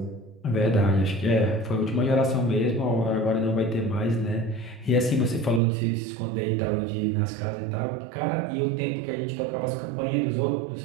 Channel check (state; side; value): drops out; left; at 5.6 s